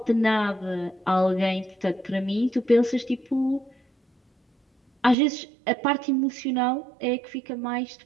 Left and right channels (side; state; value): left; drops out; at 5.2 s